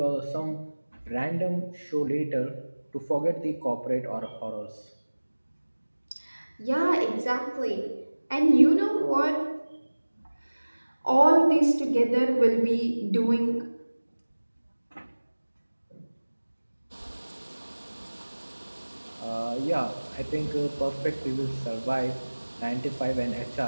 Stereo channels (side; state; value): both; inverted; correlation -1.00